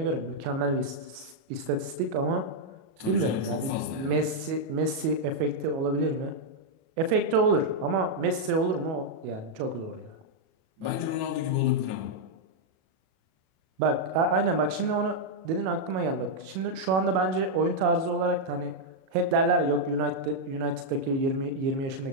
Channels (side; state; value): left; late; 37 ms